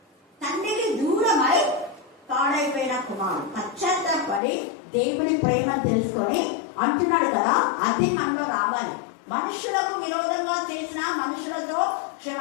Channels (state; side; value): drops out; right; at 4.4 s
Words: తండ్రికి దూరమై పాడైపోయిన కుమారుడు పశ్చాత్తాపడి దేవుని ప్రేమ తెలుసుకొని అంటున్నాడు కదా, అది మనలో రావాలి. మనుషులకు విరోధంగా చేసిన మనుషులతో